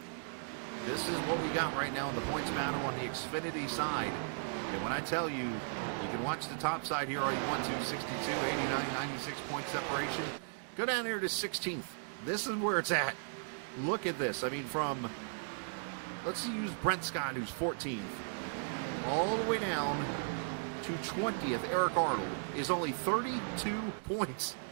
this is what we got right now in the points battle on the Xfinity side. And when I tell you, you can watch the top side here all you want to, 62, 89, 96 point separation. Go down here to 16th. This is where it's at. Look at this. I mean, from, let's use Brent Scott, who's 14th. All the way down to 20th, Eric Arnold, is only 32 points.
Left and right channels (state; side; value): silent; left; digital silence